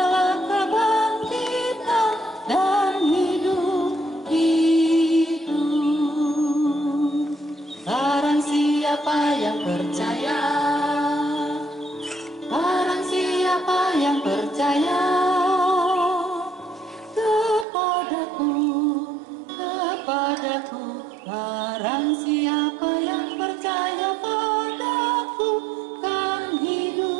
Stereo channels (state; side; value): drops out; left; at 17.7 s